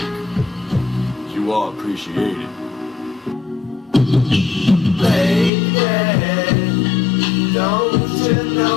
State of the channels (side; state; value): right; drops out; at 5.5 s